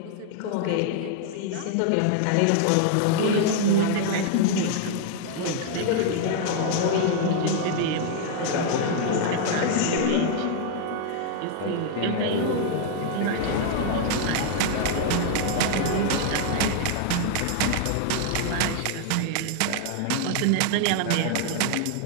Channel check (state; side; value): different; both; correlation 0.00